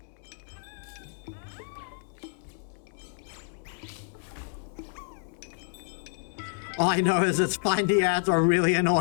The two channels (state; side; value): silent; right; digital silence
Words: All I know is its findy ads are really